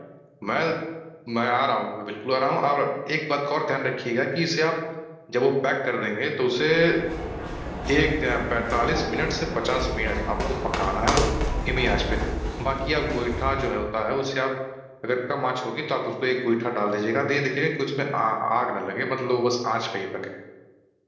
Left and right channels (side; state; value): both; identical; correlation 1.00